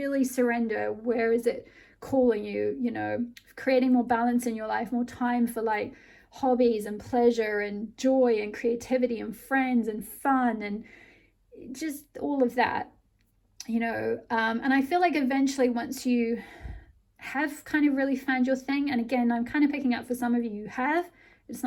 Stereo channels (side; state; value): both; identical; correlation 1.00